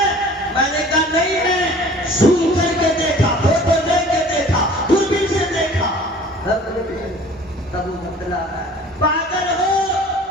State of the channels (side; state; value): both; normal; correlation 0.47